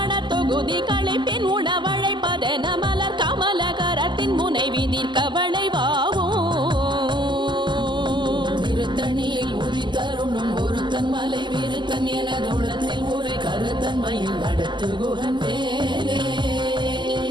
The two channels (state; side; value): late; left; 0.22 ms